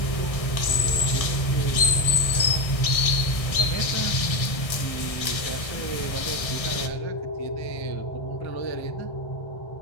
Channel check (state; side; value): late; right; 1.6 ms